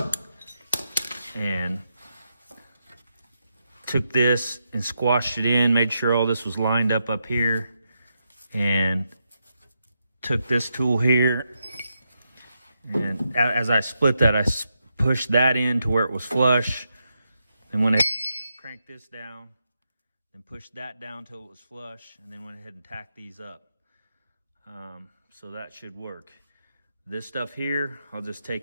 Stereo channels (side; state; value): both; inverted; correlation -0.83